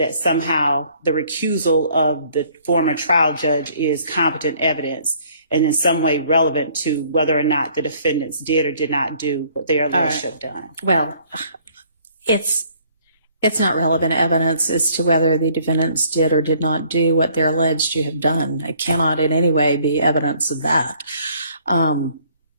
somehow the recusal of the former trial judge is competent evidence and in some way relevant to whether or not the defendants did or did not do what they are alleged to have done. Well, it's not relevant evidence as to whether the defendants did or did not do what they're alleged to have done. It cannot in any way be evidence of that. I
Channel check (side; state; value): both; inverted; correlation -0.60